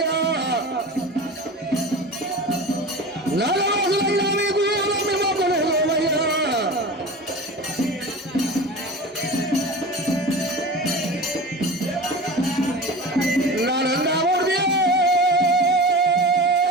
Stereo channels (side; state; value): both; normal; correlation 0.32